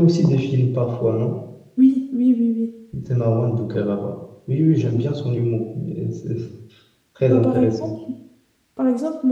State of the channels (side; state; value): both; identical; correlation 1.00